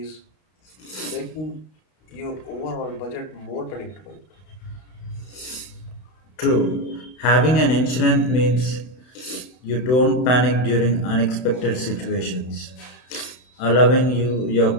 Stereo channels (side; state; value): right; late; 32 ms